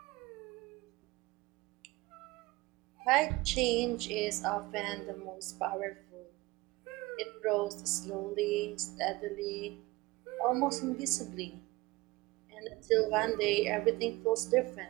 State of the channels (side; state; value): left; quieter; 21.2 dB